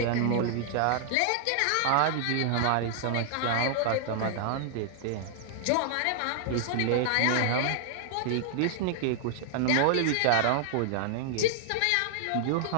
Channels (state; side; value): different; both; correlation 0.00